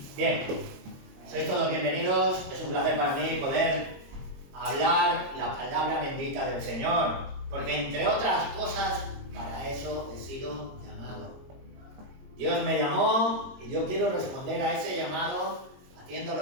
Bien, sois todos bienvenidos. Es un placer para mí poder hablar la palabra bendita del Señor, porque entre otras cosas, para eso he sido llamado. Dios me llamó y yo quiero responder a ese llamado haciendo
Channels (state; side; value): late; left; 22 ms